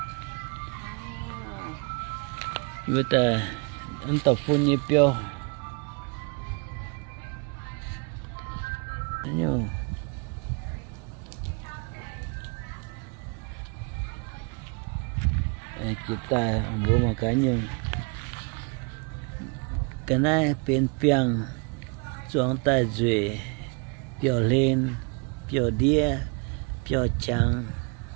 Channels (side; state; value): left; quieter; 34.3 dB